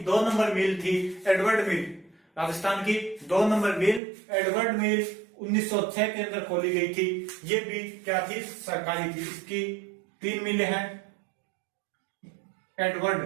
2 नंबर मिल थी एडवर्ड मिल। राजस्थान की 2 नंबर मिल एडवर्ड मिल 1906 के अंदर खोली गई थी। ये भी क्या थी, सरकारी थी। इसकी 3 मिलें हैं। एडवर्ड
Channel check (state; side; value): drops out; left; at 4.0 s